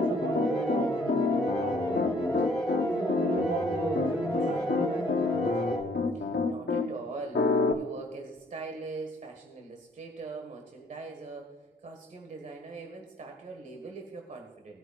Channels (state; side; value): normal; both; correlation 0.61